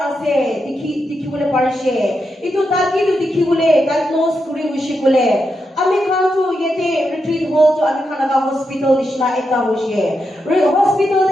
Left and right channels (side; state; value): both; normal; correlation 0.85